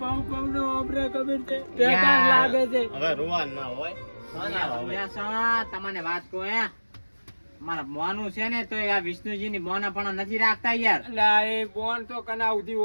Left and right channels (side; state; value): both; inverted; correlation -1.00